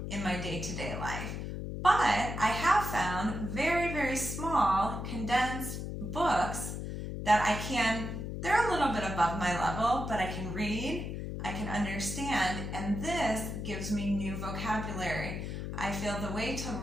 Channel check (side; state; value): left; noise; hum, 5 dB below the sound